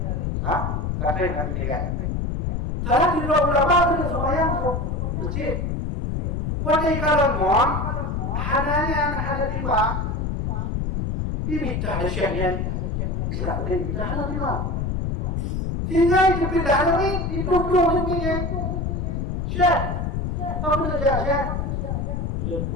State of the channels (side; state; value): left; noise; rumble, 1 dB below the sound